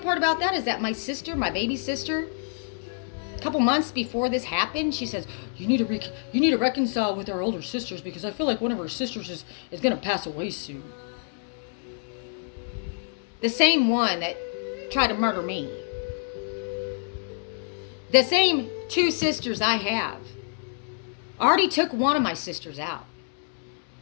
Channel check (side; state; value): right; silent; digital silence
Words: part about that is that my sister, my baby sister, a couple months before this happened, she says, you need to reconcile with our older sisters because I feel like one of our sisters is going to pass away soon. The same one that tried to murder me. The same two sisters I have already took one of my sisters out.